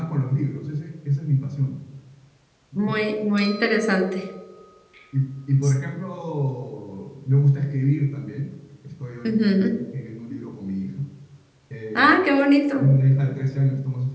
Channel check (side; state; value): both; identical; correlation 1.00